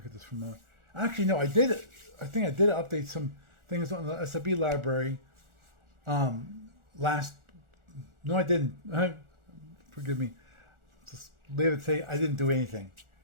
this for a moment. Actually, no, I did it. I think I did update some things on the SB library. No, I didn't. Forgive me. Just leave it say I didn't do anything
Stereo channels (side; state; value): left; late; 1.4 ms